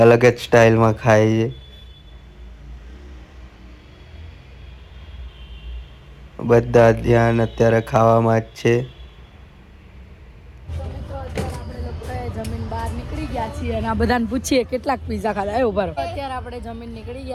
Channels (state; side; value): identical; both; correlation 1.00